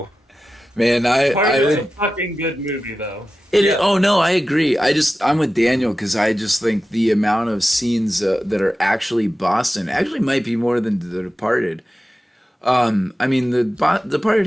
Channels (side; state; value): both; normal; correlation 0.93